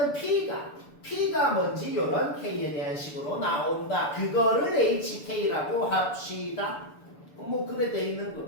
p가 뭔지 요런 k에 대한 식으로 나온다. 그거를 hk라고 합시다. 뭐 그래 돼 있는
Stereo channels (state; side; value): late; right; 6.9 ms